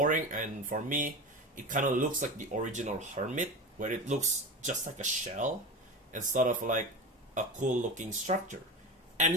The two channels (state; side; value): normal; both; correlation 0.26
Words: and for me, it kind of looks like the original hermit, where it looks just like a shell instead of like a cool looking structure.